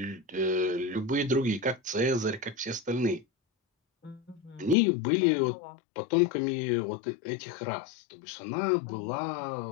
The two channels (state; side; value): drops out; right; at 4.8 s